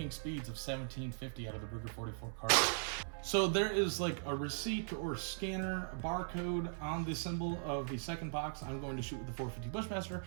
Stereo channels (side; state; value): left; silent; 52 dB below the other